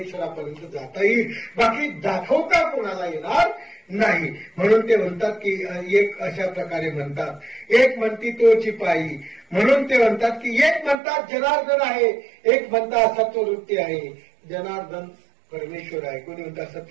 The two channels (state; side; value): drops out; left; at 11.0 s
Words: जाता येईल, बाकी दाखवता कोणाला येणार नाही. म्हणून ते म्हणतात की एक अशा प्रकारे म्हणतात, एक म्हणती तोची पायी. म्हणून ते म्हणतात की एक म्हणतात जनार्दन आहे, एक म्हणतात सत्ववृत्ती आहे. जनार्दन परमेश्वर आहे, कोणी म्हणतात